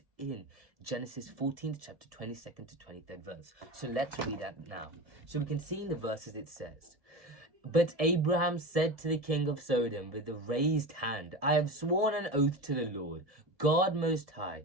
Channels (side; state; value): left; late; 1.7 ms